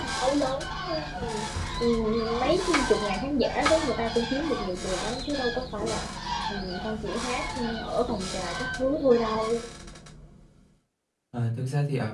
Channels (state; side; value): identical; both; correlation 1.00